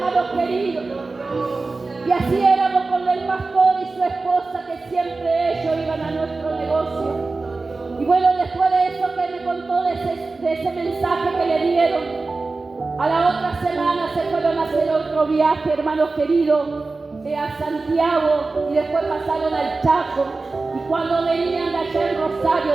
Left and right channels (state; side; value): quieter; left; 3.7 dB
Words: queridos. Y así éramos con el pastor y su esposa, que siempre ellos iban a nuestro negocio. Y bueno, después de eso que me contó de ese mensaje que le dieron, a la otra semana se fueron a hacer otro viaje, hermanos queridos, a Santiago, y después pasaron al Chaco. Y cuando venían de allá en Rosario